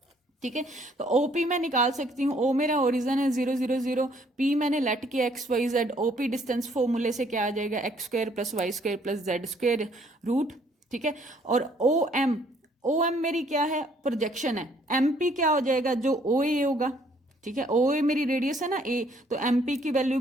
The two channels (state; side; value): normal; both; correlation 0.64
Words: ठीक है, तो ओपी मैं निकाल सकती हूँ, ओ मेरा ओरिजन है 0 0 0, पी मैंने लेट किया x Y z, OP distance फॉर्मूले से क्या आ जाएगा? X square plus y square plus z square root. ठीक है, और ओ एम मेरी क्या है? प्रोजेक्शन है। एम पी क्या हो जाएगा? जो ओ ए होगा। ठीक है, ओ ए मेरी रेडियस है ना ए, तो एम पी की वैल्यू